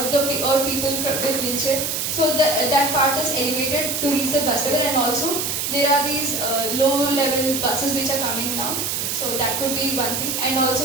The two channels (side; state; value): right; noise; hiss, 1 dB below the sound